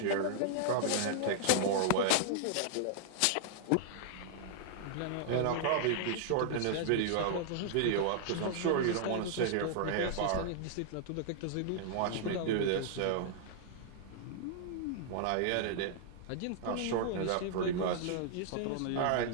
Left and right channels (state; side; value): different; both; correlation -0.01